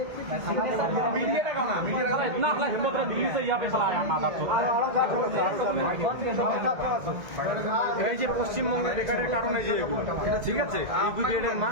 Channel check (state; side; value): late; left; 1.7 ms